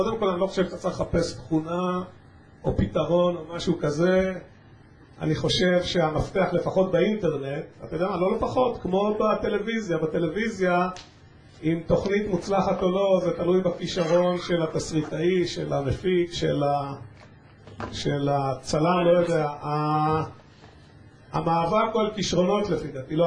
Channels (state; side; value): identical; both; correlation 1.00